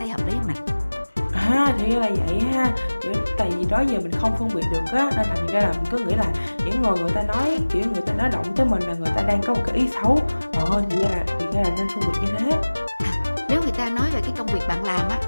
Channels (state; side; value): inverted; both; correlation -1.00